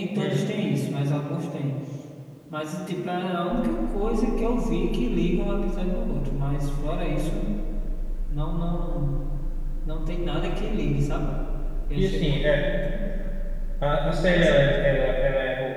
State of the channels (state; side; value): identical; both; correlation 1.00